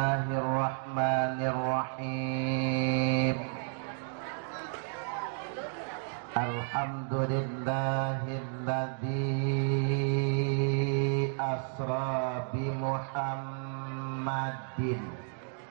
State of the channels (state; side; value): silent; left; 56 dB below the other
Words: Alhamdulillahilladzi asra bi Muhammadin